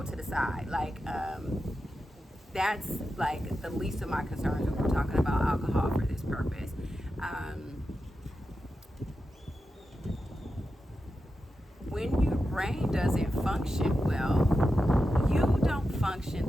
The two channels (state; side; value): normal; both; correlation 0.90